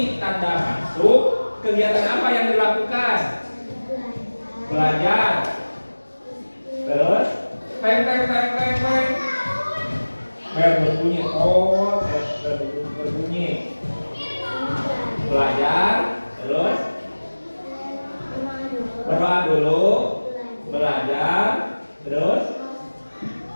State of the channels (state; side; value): inverted; both; correlation -1.00